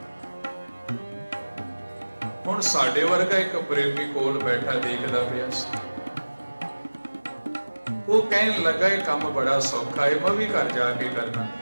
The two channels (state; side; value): inverted; both; correlation -1.00